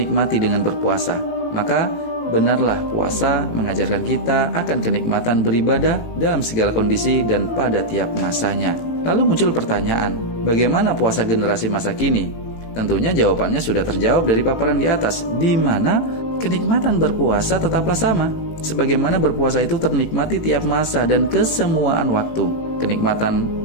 dengan berpuasa. Maka benarlah puasa mengajarkan kita akan kenikmatan beribadah dalam segala kondisi dan pada tiap masanya. Lalu muncul pertanyaan, bagaimana puasa generasi masa kini? Tentunya jawabannya sudah terjawab dari paparan di atas, di mana kenikmatan berpuasa tetaplah sama. Sebagaimana berpuasa itu ternikmati tiap masa dan kesemuaan waktu. Kenikmatan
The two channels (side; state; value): right; late; 18 ms